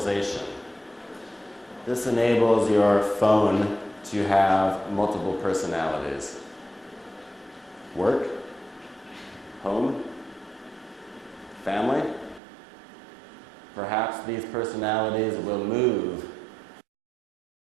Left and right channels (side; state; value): left; drops out; at 12.4 s